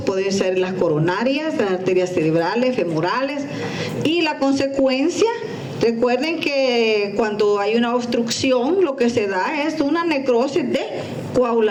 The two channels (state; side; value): identical; both; correlation 1.00